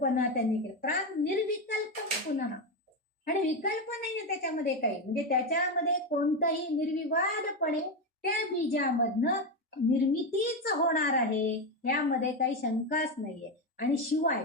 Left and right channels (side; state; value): both; normal; correlation 0.12